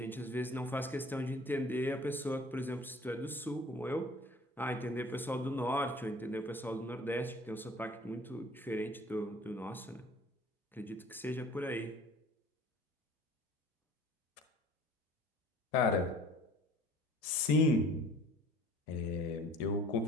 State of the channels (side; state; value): both; normal; correlation 0.49